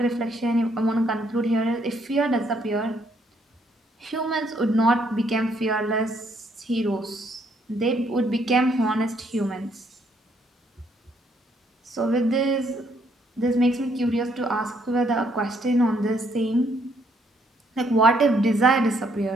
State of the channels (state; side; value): normal; both; correlation 0.70